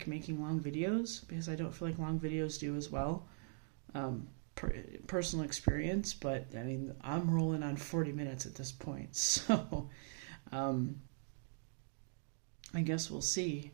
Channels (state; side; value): silent; left; digital silence